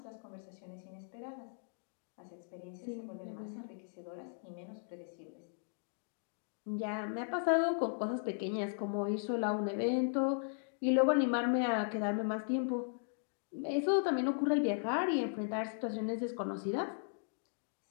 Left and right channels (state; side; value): silent; right; digital silence